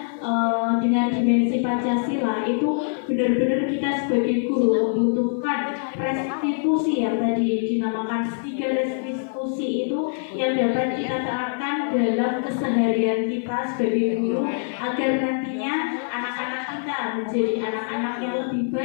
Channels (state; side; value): silent; right; 56 dB below the other